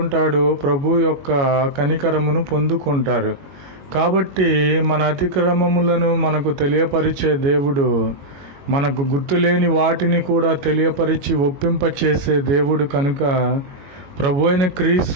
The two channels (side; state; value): left; late; 21 ms